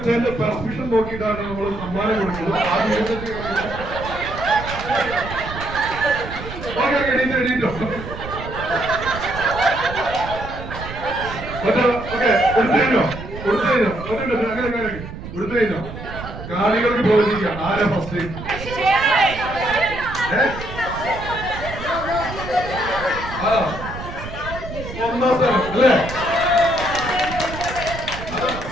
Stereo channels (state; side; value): noise; right; rumble, 10 dB below the sound